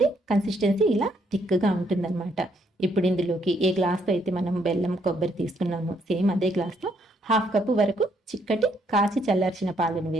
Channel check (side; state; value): both; normal; correlation 0.71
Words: కన్సిస్టెన్సీ ఇలా థిక్గా ఉంటుందన్నమాట. ఇప్పుడు ఇందులోకి ఏ గ్లాస్తో అయితే మనం బెల్లం కొబ్బరి తీసుకున్నామో సేమ్ అదే గ్లాస్తో 1/2 కప్పు వరకు చిక్కటి కాచి చల్లార్చిన పాలను